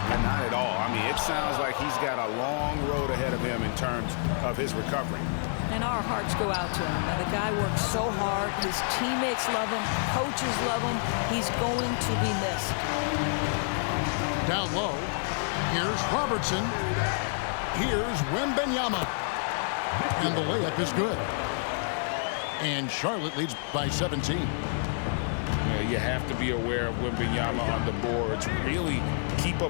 Not at all. I mean, it sounds like he's got a long road ahead of him in terms of his recovery. And our hearts go out to him. Now, the guy works so hard. His teammates love him. Coaches love him. He's going to be missed. Down low, here's Robertson. Here's Wembanyama. And the layup is good. And Charlotte leads by 17. You have to be aware of Wembanyama on the boards. Really keep a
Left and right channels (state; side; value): silent; right; digital silence